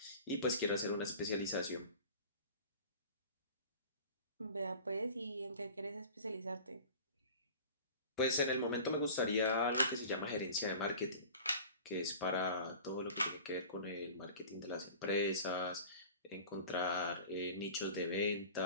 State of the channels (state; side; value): inverted; both; correlation -0.40